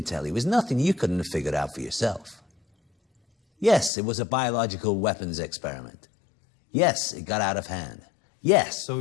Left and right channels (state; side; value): drops out; right; at 3.9 s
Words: tell you is nothing you couldn't have figured out for yourself. Yes, it was a biological weapons experiment. Yes, it got out of hand. Yes. So